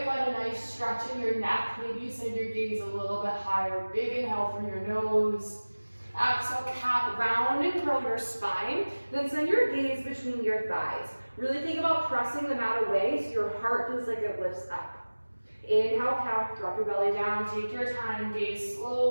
find a nice stretch in your neck. Maybe you send your gaze a little bit higher. Big inhale through your nose. Exhale, cat, round and curl your spine. Then send your gaze between your thighs. Really think about pressing the mat away so your heart feels like it lifts up. Inhale, cow, drop your belly down. Take your time, gaze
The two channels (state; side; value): inverted; both; correlation -1.00